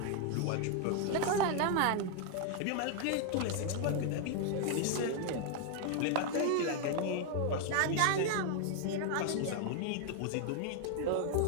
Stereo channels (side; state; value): both; different; correlation 0.00